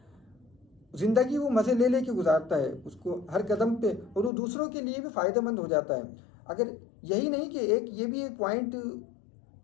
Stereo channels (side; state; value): right; drops out; at 4.3 s